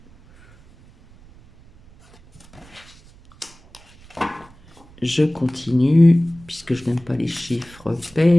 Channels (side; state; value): right; noise; rumble, 25 dB below the sound